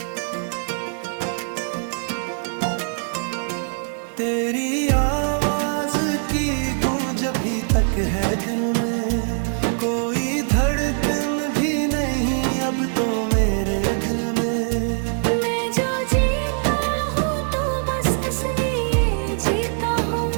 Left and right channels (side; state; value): left; silent; digital silence